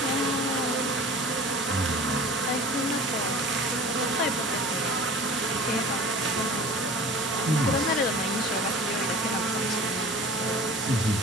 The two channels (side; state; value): both; normal; correlation 0.41